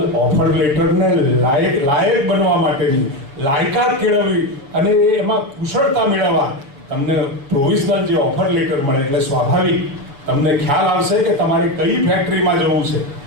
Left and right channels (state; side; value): late; left; 7.1 ms